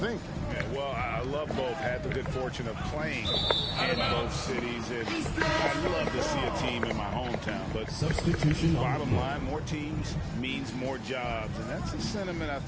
Yeah, well, I love both. Had the good fortune of playing in both cities, and I'd love to see a team in my hometown. But substitution. Bottom line, more teams means more jobs, and that's a sentiment I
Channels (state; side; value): identical; both; correlation 1.00